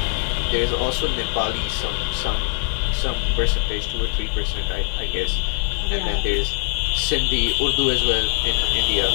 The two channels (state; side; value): silent; right; digital silence